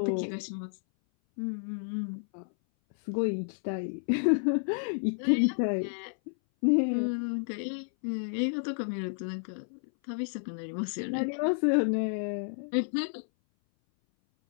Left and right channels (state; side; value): silent; right; 57 dB below the other